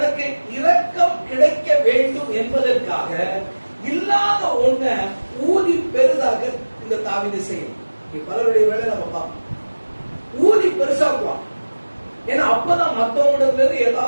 இரக்கம் கிடைக்க வேண்டும் என்பதற்காக இல்லாத ஒண்ண ஊதி பெரிதாக இந்த தாவீது செய்யும். பலருடைய வேலை நம்ம பார்ப்போம், ஊதி பெருசாக்குவான். ஏன்னா அப்பதான் மற்றவங்களிடத்துல இருந்து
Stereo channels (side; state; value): both; inverted; correlation -1.00